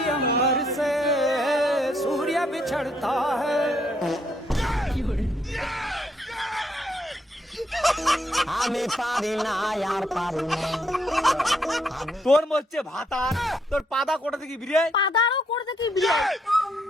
अंबर से सूर्य बिछड़ता है। আমি পারি না আর পারি না। তোর মধ্যে ভাতার তোর পাদা কোটা থেকে বিরে পাদারও করতে কি বিড়াই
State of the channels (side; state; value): both; normal; correlation 0.73